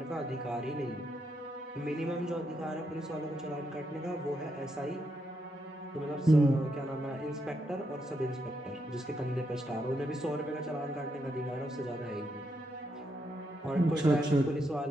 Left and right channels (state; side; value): normal; both; correlation 0.80